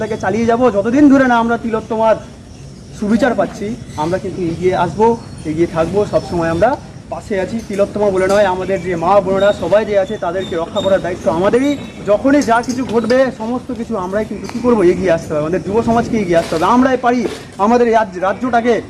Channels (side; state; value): both; identical; correlation 1.00